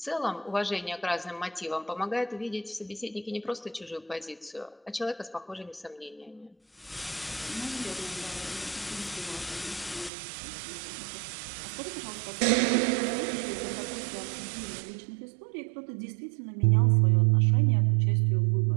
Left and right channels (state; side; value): drops out; left; at 10.1 s